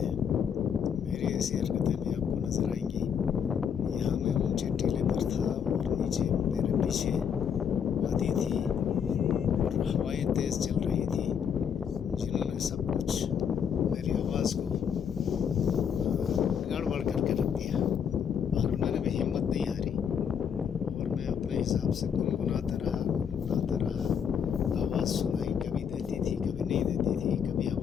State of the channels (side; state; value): right; quieter; 7.6 dB